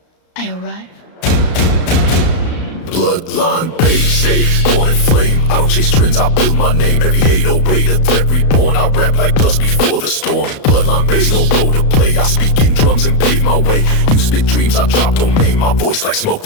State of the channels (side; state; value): right; late; 34 ms